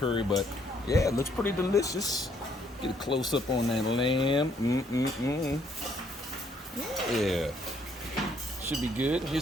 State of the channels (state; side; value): normal; both; correlation 0.68